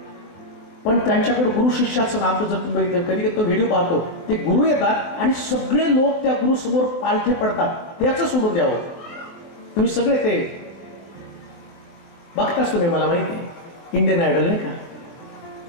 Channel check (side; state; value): right; late; 23 ms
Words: पण त्यांच्याकडे गुरु शिष्याचं नातं जर तुम्ही बघितलं, कधी कधी तो व्हिडिओ पाहतो, ते गुरु येतात आणि सगळे लोक त्या गुरु समोर पालथे पडतात, त्याचं सोडून द्यावं. तुम्ही सगळे ते बघताच, तुम्ही मला माहिती आहे इंडियन आयडल नाही का,